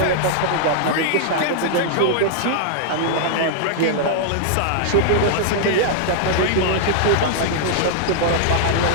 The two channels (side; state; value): both; different; correlation -0.01